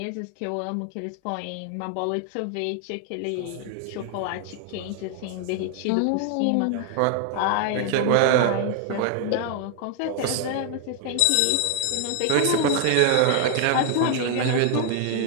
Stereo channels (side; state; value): both; different; correlation 0.00